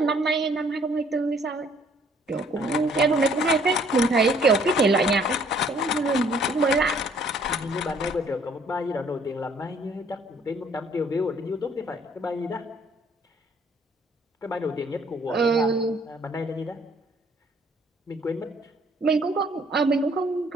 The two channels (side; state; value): both; normal; correlation 0.61